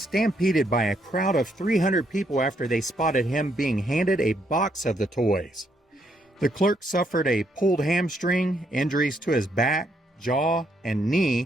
by a crowd of 300 people after they spotted him being handed a box of the toys. The clerk suffered a pulled hamstring, injuries to his back, jaw, and knee,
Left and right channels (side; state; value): both; normal; correlation 0.74